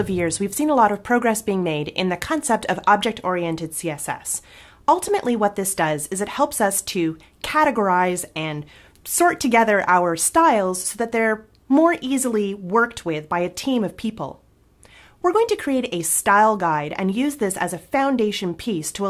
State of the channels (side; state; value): both; identical; correlation 1.00